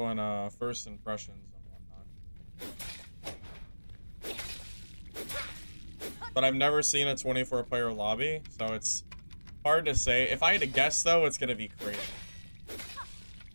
first impressions and whatnot. But I've never seen a 24-player lobby, so it's hard to say. If I had to guess, though, it's gonna be crazy.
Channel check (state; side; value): inverted; both; correlation -1.00